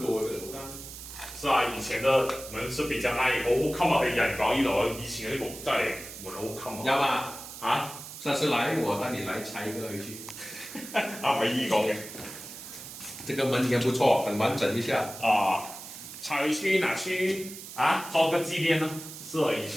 嘅嗰間。是啊，以前嘅門是比較難，好襟啊！佢人講呢度，以前嗰啲木真係門好襟啊。有嘛？啊？下次來我帶你來拆一個回去。唔係依講嘅。這個門也不錯，很完整一下。拆回去拿去裝個紀念呢？是啊，以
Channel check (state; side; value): noise; right; hiss, 12 dB below the sound